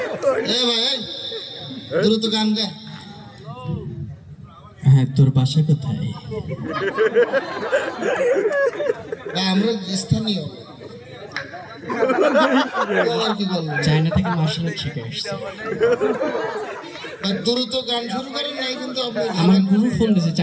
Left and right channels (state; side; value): identical; both; correlation 1.00